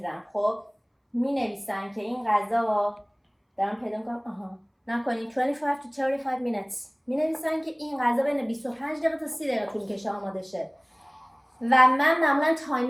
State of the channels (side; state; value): both; identical; correlation 1.00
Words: خب می نویسن که این غذا دارم پیدا میکنم نکنی 25 to 35 minutes، می نویسن که این غذا بین 25 دقیقه تا 30 دقیقه طول کشه آماده شه و من معمولا